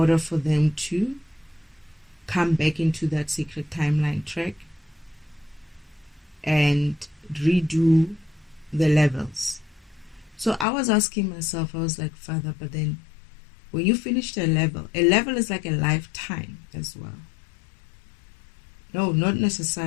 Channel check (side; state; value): right; drops out; at 10.7 s